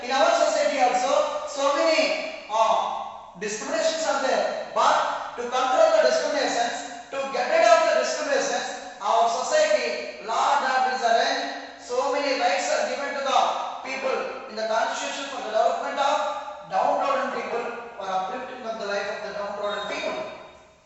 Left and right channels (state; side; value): identical; both; correlation 1.00